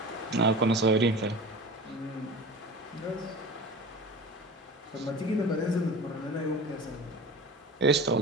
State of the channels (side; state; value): both; normal; correlation 0.35